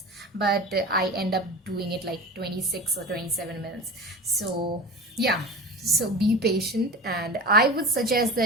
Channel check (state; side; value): normal; both; correlation 0.31